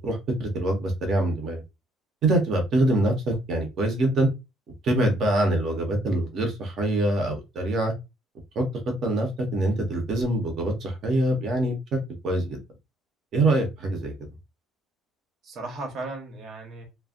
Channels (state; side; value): normal; both; correlation 0.68